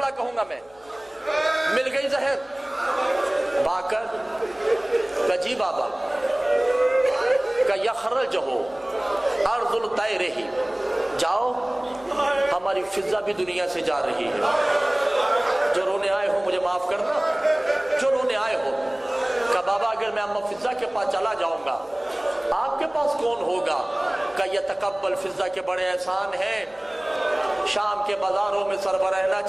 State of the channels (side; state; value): left; noise; hum, 28 dB below the sound